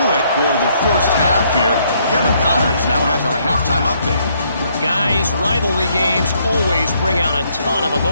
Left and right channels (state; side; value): inverted; both; correlation -0.70